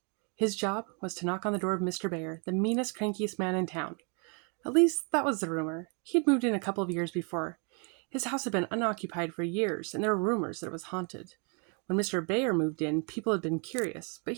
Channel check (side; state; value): left; quieter; 36.2 dB